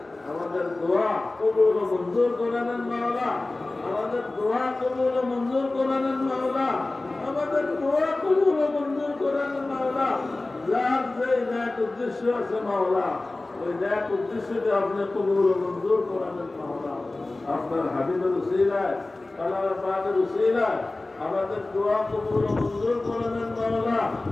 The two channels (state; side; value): quieter; right; 3.0 dB